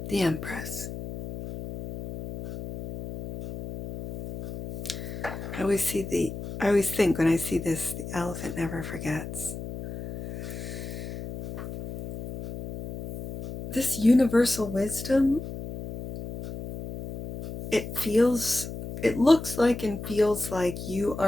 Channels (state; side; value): noise; left; hum, 9 dB below the sound